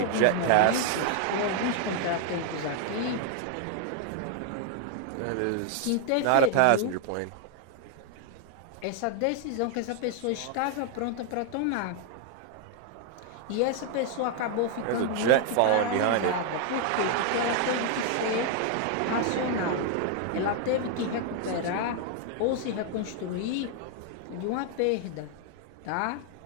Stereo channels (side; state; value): both; different; correlation 0.00